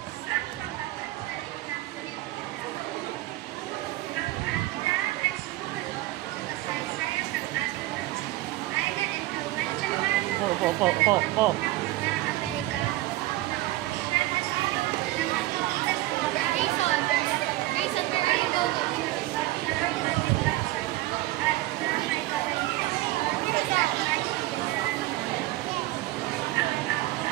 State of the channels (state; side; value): quieter; left; 17.5 dB